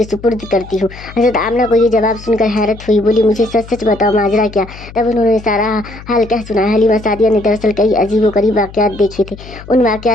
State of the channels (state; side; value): noise; left; hum, 17 dB below the sound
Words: सुपुर्द करती हूँ। हज़रत आमना को ये जवाब सुनकर हैरत हुई, बोली, मुझे सच सच बताओ माजरा क्या? तब उन्होंने सारा हाल कह सुनाया। हलीमा सादिया ने दरअसल कई अजीब गरीब वाक़यात देखे थे, उन